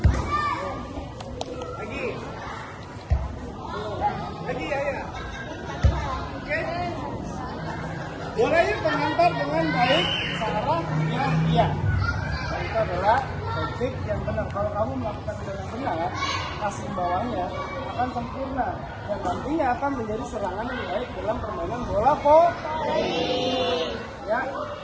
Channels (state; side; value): identical; both; correlation 1.00